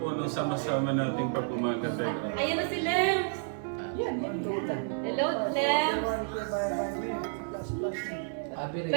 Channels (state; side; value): silent; left; 57 dB below the other